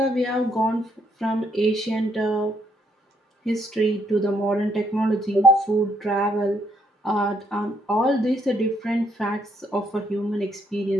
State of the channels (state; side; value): normal; both; correlation 0.72